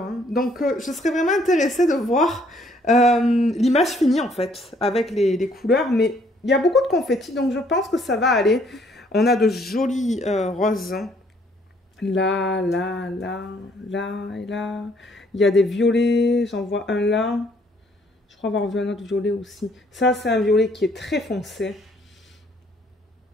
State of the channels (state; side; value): normal; both; correlation 0.64